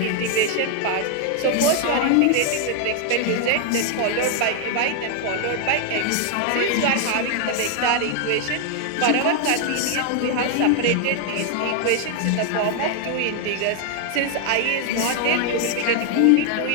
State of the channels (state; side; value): different; both; correlation 0.00